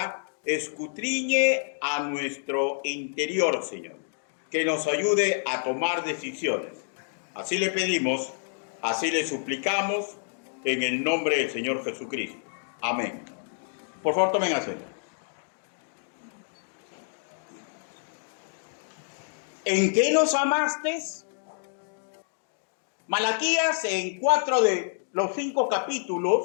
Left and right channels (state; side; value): silent; right; digital silence